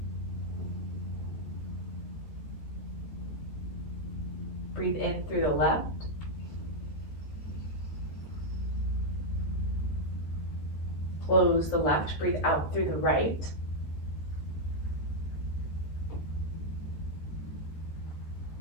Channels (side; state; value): right; late; 14 ms